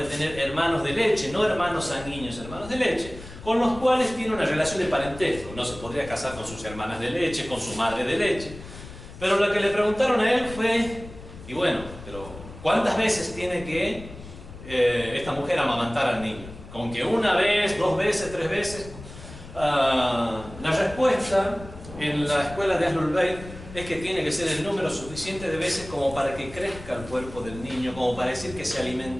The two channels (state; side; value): noise; left; rumble, 15 dB below the sound